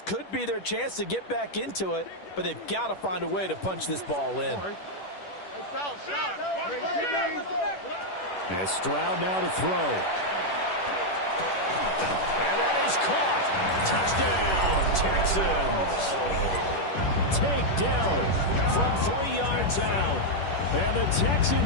could be their chance to get back into it, but they've got to find a way to punch this ball in. And Stroud now to throw. And that is caught. Touchdown, Texans. Takedown from 3 yards out. And the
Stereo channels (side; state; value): right; late; 10 ms